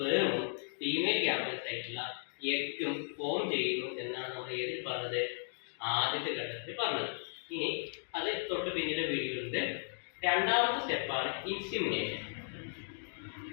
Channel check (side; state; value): right; silent; digital silence